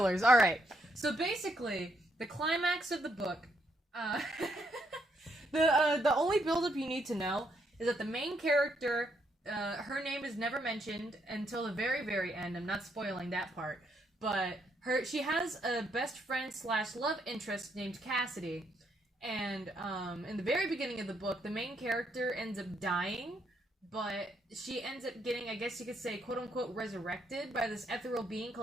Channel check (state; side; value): normal; both; correlation 0.75